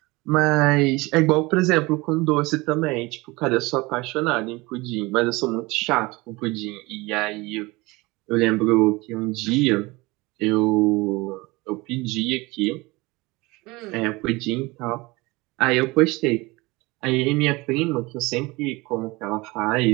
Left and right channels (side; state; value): left; quieter; 23.0 dB